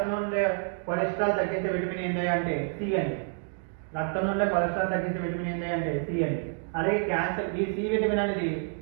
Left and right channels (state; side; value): silent; left; 57 dB below the other